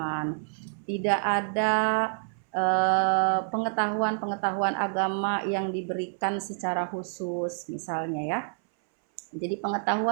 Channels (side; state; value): left; silent; 59 dB below the other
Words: tidak ada pengetahuan agama yang diberikan secara khusus misalnya ya. Jadi